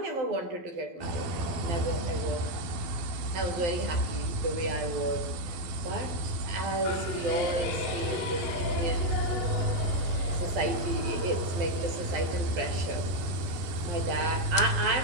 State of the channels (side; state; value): left; late; 12 ms